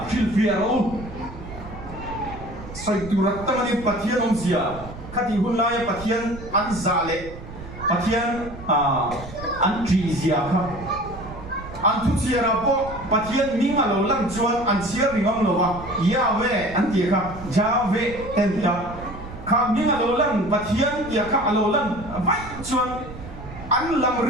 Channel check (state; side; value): noise; right; rumble, 14 dB below the sound